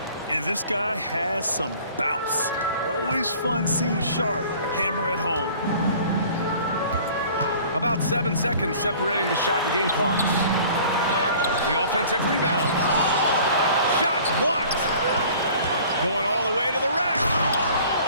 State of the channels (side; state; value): both; inverted; correlation -0.48